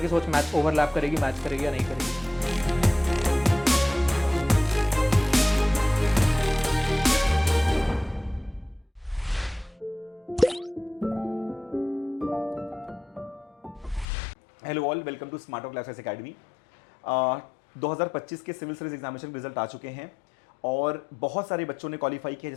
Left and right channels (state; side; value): drops out; right; at 14.1 s